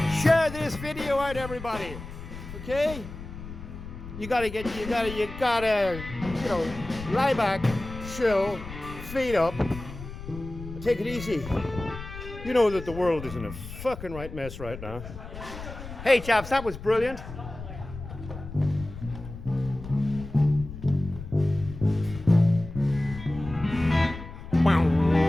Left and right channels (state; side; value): noise; left; rumble, 12 dB below the sound